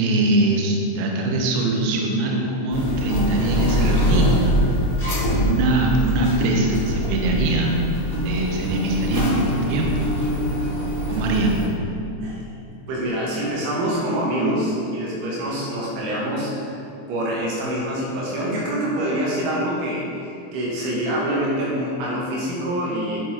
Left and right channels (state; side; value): late; left; 23 ms